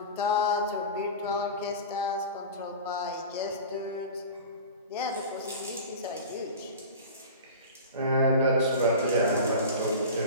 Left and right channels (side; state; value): both; inverted; correlation -0.32